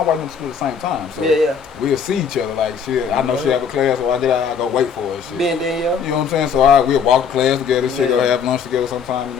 wife went to school at the same time. So we'll see each other. Like, shit, I know she have a class, so I go wait for her. Shit. Been there, you know what I'm saying? So we'll walk to class together. Shit, go have lunch together sometime. You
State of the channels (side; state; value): right; quieter; 6.6 dB